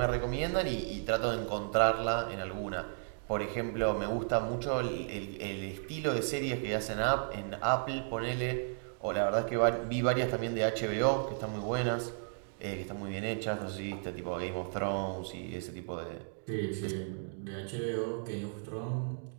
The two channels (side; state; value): left; silent; digital silence